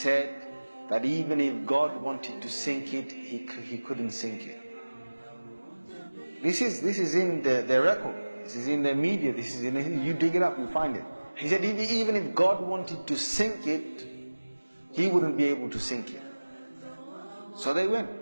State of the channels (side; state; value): both; inverted; correlation -1.00